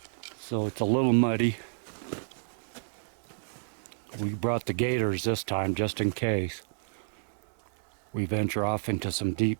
So it's a little muddy. We brought the gators this time just in case we venture off into some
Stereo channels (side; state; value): left; silent; digital silence